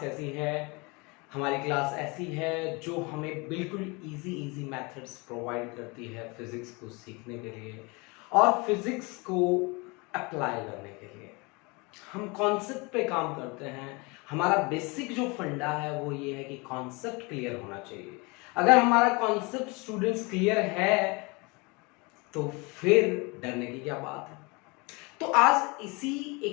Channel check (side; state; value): right; quieter; 27.5 dB